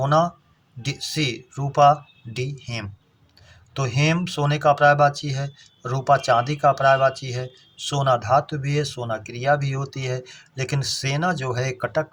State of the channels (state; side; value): identical; both; correlation 1.00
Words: सी रूपा, डी हेम। तो हेम सोने का पर्यायवाची है, रूपा चांदी का पर्यायवाची है, सोना धातु भी है, सोना क्रिया भी होती है, लेकिन सेना जो है कटक